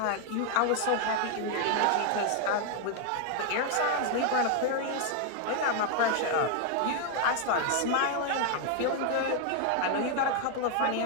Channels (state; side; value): different; both; correlation 0.00